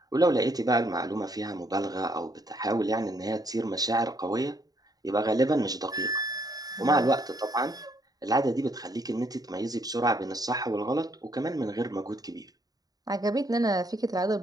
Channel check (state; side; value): late; left; 0.18 ms